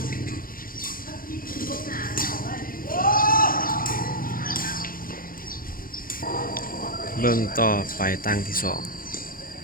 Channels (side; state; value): right; late; 0.41 ms